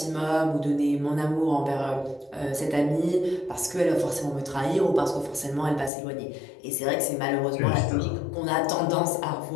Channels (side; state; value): right; drops out; at 5.9 s